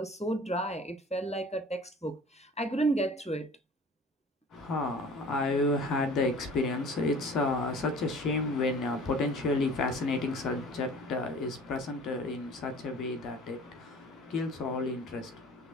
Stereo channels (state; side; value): normal; both; correlation 0.45